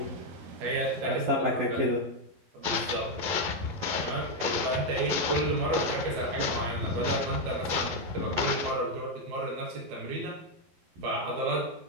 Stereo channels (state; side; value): late; left; 11 ms